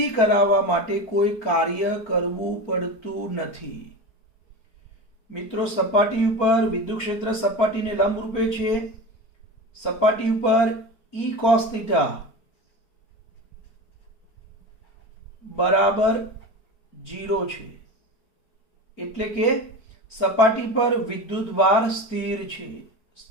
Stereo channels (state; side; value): late; right; 4.4 ms